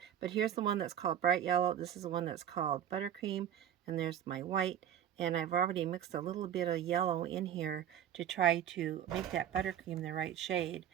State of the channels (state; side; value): quieter; left; 10.0 dB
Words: But here's the one that's called bright yellow. This is the one that's called buttercream. And there's my white. And I've already mixed a little bit of yellow in here to try to make that buttercream the right shade.